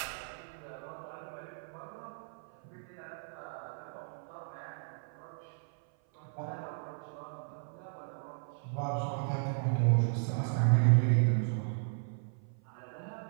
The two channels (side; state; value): left; silent; 54 dB below the other